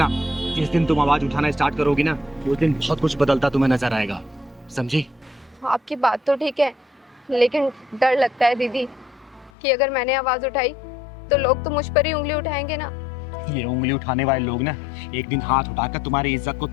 जिस दिन तुम आवाज उठाना स्टार्ट करोगी ना, उस दिन बहुत कुछ बदलता तुम्हें नजर आएगा, समझी? आपकी बात तो ठीक है, लेकिन डर लगता है दीदी कि अगर मैंने आवाज उठाई तो लोग तो मुझ पर ही उंगली उठाएंगे ना। ये उंगली उठाने वाले लोग ना एक दिन हाथ उठाकर तुम्हारी इज्जत को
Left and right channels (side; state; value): right; drops out; at 9.5 s